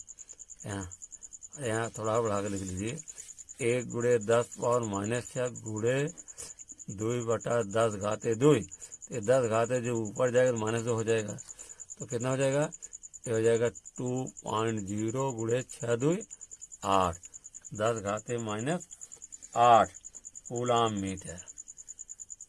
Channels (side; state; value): both; identical; correlation 1.00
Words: यहाँ थोड़ा बढ़ा के लिख लीजिए 1 × 10⁻⁻6 गुणे 2/10⁻2। ये 10 जो ऊपर जाएगा तो -2 हो जाएगा, तो कितना हो जाएगा, ये हो जाएगा 2.0 × 6 2 8 10⁻⁸ कूलाम मीटर